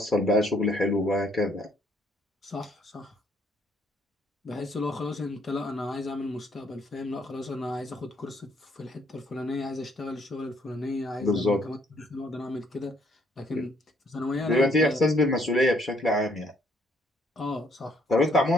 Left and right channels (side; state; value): both; normal; correlation 0.67